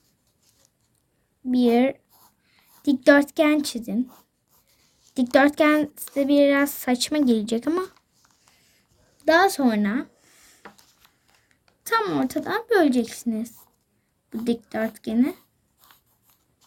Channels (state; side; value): identical; both; correlation 1.00